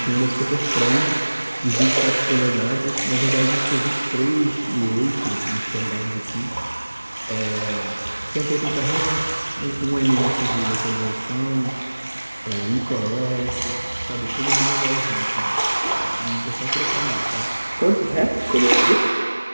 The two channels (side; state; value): both; inverted; correlation -1.00